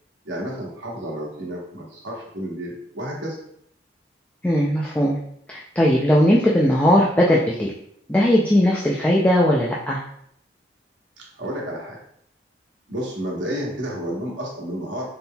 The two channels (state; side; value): normal; both; correlation 0.75